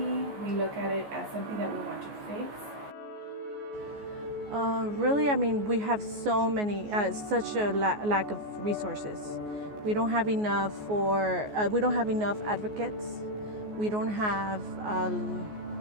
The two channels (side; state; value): left; late; 14 ms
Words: We look at it as something that we want to fix. Really, I mean, we have so many, such a lack of resources. We don't have enough we don't have enough advocates. We don't have